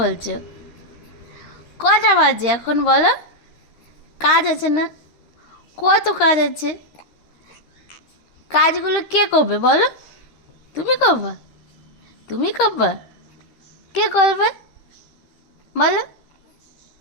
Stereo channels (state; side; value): late; right; 13 ms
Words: কটা বাজে এখন বলো? কাজ আছে না? কত কাজ আছে। কাজগুলো কে করবে বলো? তুমি করবা? তুমি করবা? কে করবে বলো?